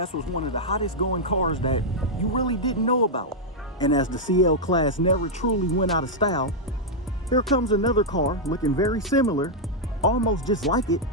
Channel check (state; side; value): normal; both; correlation -0.04